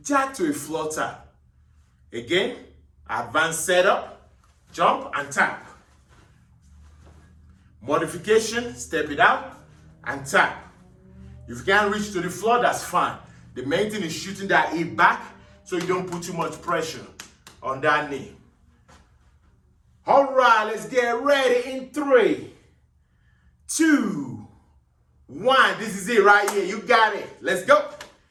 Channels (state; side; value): identical; both; correlation 1.00